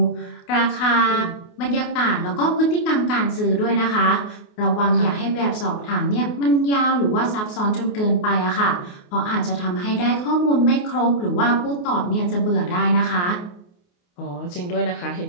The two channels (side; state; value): right; late; 28 ms